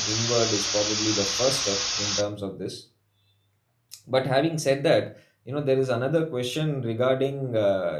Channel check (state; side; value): identical; both; correlation 1.00